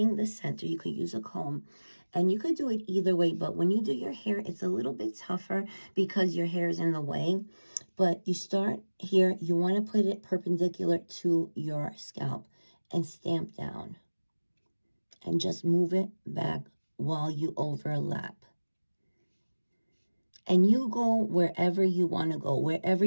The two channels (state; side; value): inverted; both; correlation -1.00